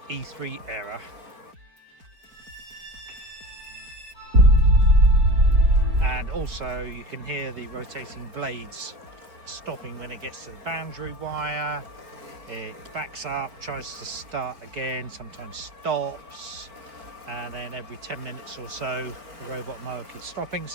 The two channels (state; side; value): late; left; 4.4 ms